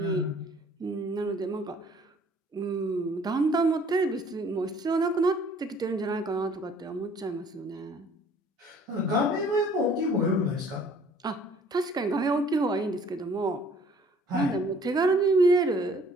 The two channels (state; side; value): normal; both; correlation 0.56